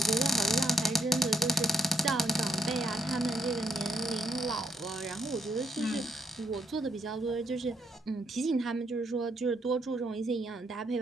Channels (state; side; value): normal; both; correlation 0.77